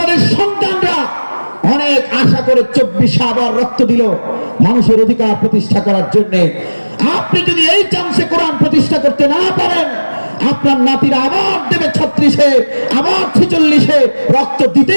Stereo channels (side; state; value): both; inverted; correlation -1.00